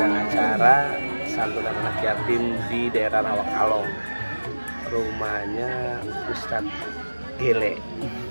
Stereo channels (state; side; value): inverted; both; correlation -1.00